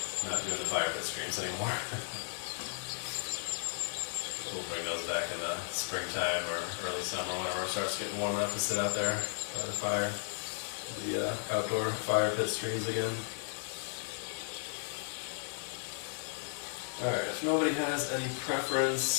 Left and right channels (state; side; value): silent; right; digital silence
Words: not doing the fire pit streams anymore. We'll bring those back in the springtime or early summer whenever it starts getting warm enough to sit out there by the fire. The outdoor fire pit streams again. Alright, if nobody has any